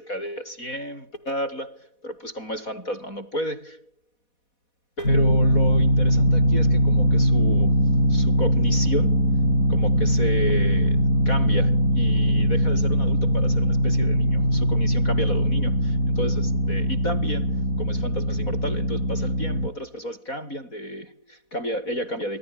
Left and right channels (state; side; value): late; right; 4.1 ms